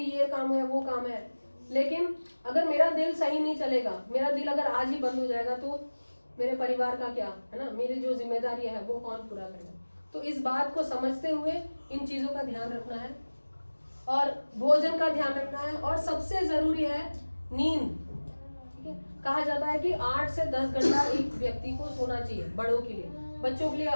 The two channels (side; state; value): both; inverted; correlation -1.00